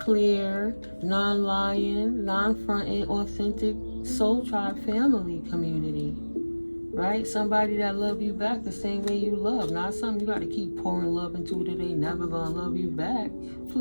non-lying, non-fronting, authentic soul tribe family community. Right? Somebody that love you back the same way you love. Not something you got to keep pouring love into that they never going to love you back.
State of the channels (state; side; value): inverted; both; correlation -1.00